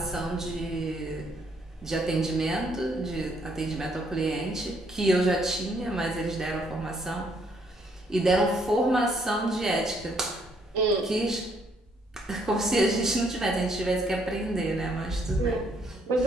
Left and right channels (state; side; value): normal; both; correlation 0.69